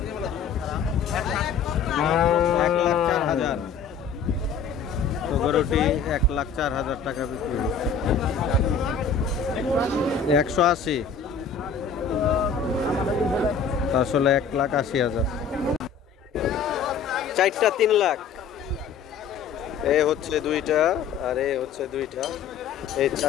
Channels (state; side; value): quieter; right; 6.1 dB